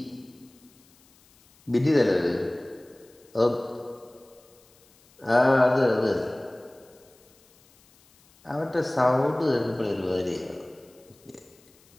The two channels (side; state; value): left; noise; hiss, 30 dB below the sound